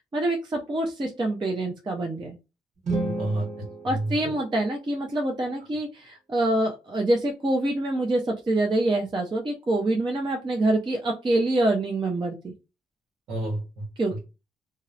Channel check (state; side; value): normal; both; correlation 0.81